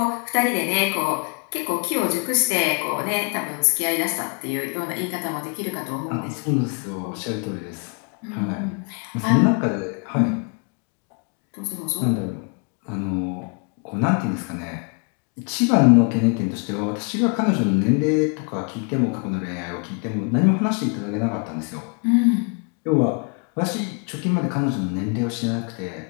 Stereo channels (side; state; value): right; quieter; 37.6 dB